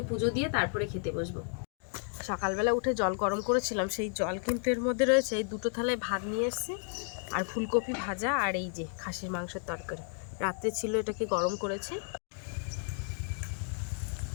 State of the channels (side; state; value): right; silent; 56 dB below the other